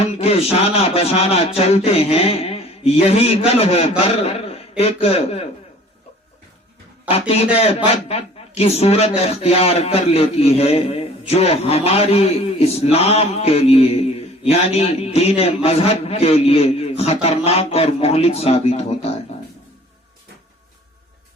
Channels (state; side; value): normal; both; correlation 0.50